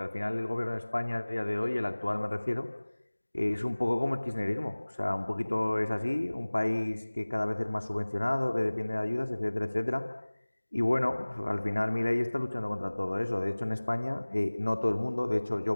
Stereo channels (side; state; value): both; inverted; correlation -1.00